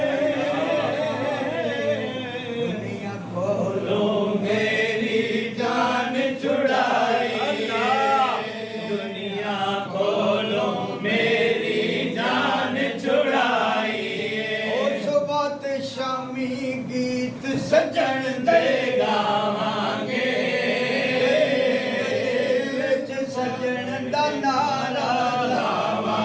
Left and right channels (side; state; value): both; identical; correlation 1.00